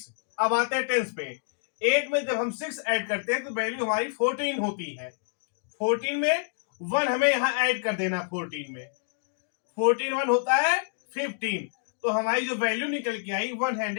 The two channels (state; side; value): silent; right; digital silence